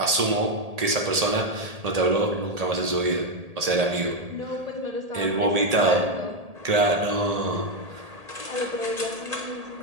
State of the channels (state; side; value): late; left; 1.8 ms